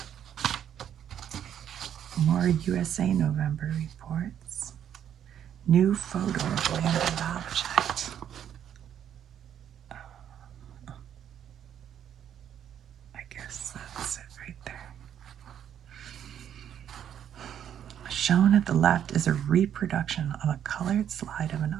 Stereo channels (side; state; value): left; quieter; 9.6 dB